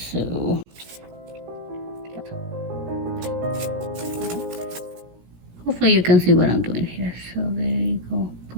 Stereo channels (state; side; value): late; left; 17 ms